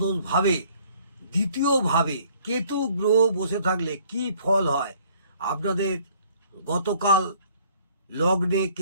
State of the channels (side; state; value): both; inverted; correlation -0.58